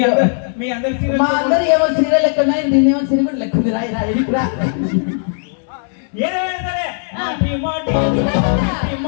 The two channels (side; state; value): right; silent; digital silence